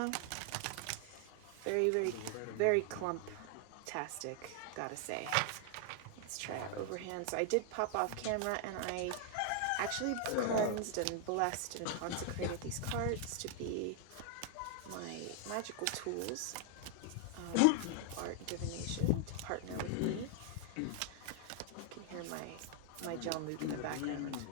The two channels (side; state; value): both; different; correlation 0.00